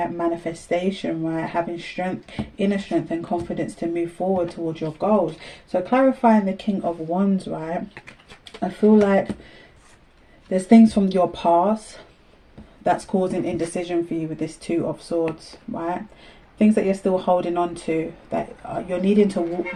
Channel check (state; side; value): identical; both; correlation 1.00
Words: Manifestation, right? Having strength, inner strength and confidence to move forward towards your goals. So clarifying the King of Wands, right? I feel like there's things from your past that's causing indecision for you with this Two of Swords, right? Things that you're still holding on to, that you're needing to